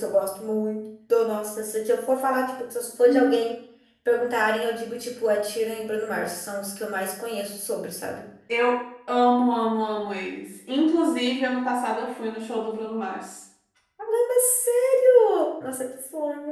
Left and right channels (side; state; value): both; identical; correlation 1.00